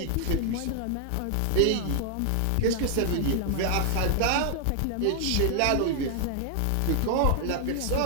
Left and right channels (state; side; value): different; both; correlation 0.00